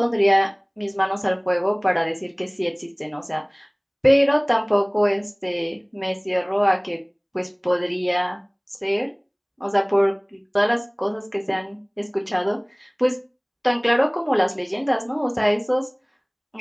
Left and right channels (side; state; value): both; identical; correlation 1.00